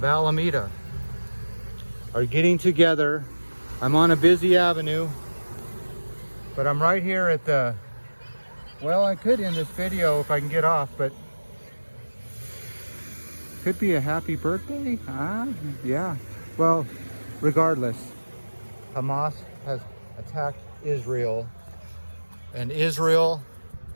Alameda are getting together. I'm on a busy avenue, but I'm right here at the, well, I could end this video if I can get off, but could be a happy birthday. Yeah. Well, regardless, Hamas has attacked Israel, and Israel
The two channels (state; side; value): inverted; both; correlation -1.00